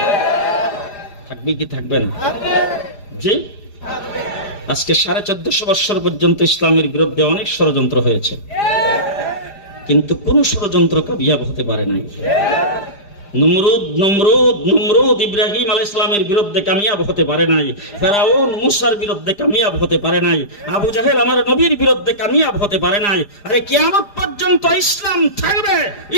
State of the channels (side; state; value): right; late; 4.9 ms